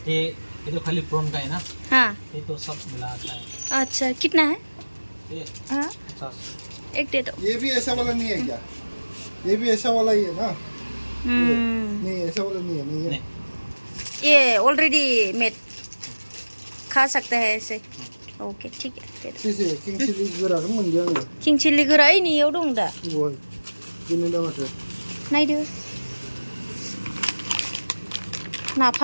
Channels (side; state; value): both; inverted; correlation -1.00